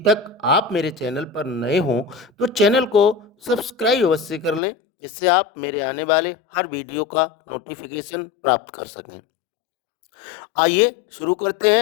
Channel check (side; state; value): right; drops out; at 4.6 s